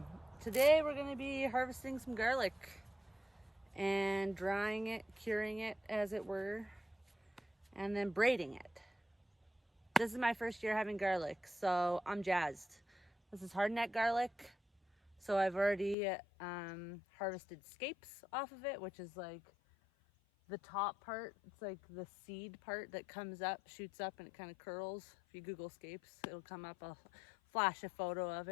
we're going to be harvesting some garlic and drying it, curing it as it were, and then braiding it. This is my first year having garlic, so I'm jazzed. This is hardneck garlic, so I've already harvested scapes off of it, which is like the top part. It's like the seed part that comes up, shoots up, and it kind of curls. If you Google scapes, it'll come up. I'll flash a photo of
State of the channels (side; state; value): right; drops out; at 16.0 s